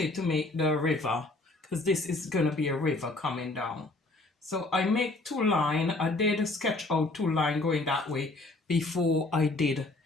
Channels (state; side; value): quieter; right; 3.0 dB